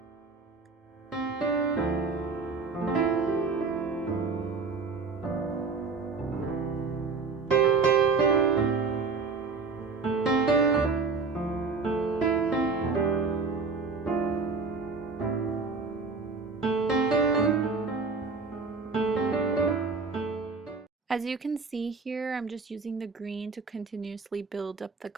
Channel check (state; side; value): quieter; left; 4.4 dB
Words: As you can see here, I'm just using the green to continuously build up the